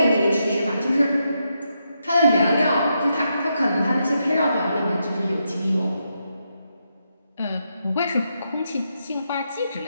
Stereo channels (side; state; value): both; inverted; correlation -0.82